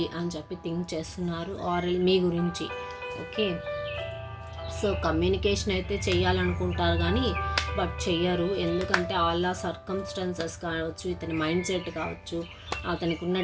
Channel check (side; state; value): both; identical; correlation 1.00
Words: అని చెప్పి థింక్ చేస్తున్నారు ఆర్ మీ గురించి. ఓకే, సో కమ్యూనికేషన్ అయితే చేయాలనుకుంటారు కానీ బట్ చెయ్యరు, ఎందుకంటే ఆల్ సర్కమ్స్టాన్సెస్ కావచ్చు, ఇతని మైండ్ సెట్ కావచ్చు, అతనికి ఉన్న